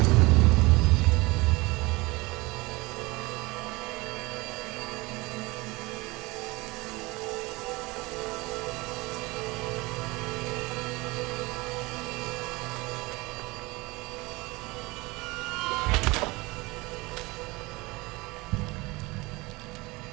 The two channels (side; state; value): left; quieter; 23.2 dB